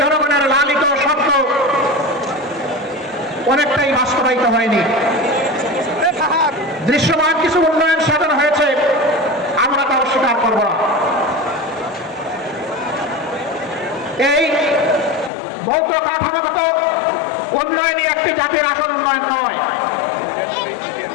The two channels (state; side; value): drops out; right; at 15.3 s